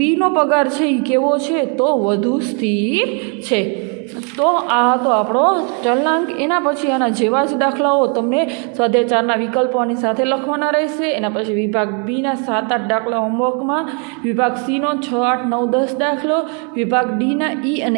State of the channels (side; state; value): left; quieter; 38.5 dB